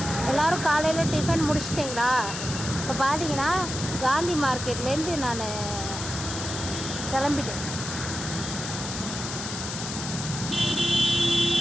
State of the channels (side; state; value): left; noise; hiss, 6 dB below the sound